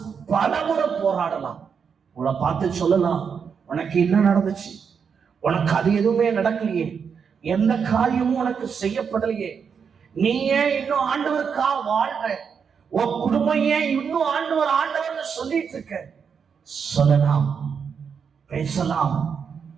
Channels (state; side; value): quieter; left; 6.5 dB